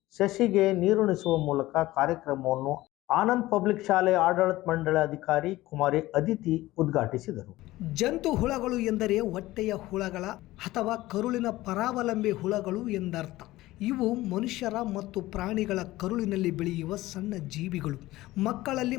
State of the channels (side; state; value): right; quieter; 17.4 dB